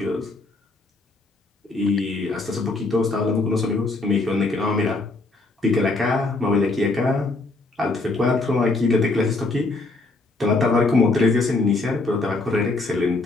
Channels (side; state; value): right; quieter; 3.3 dB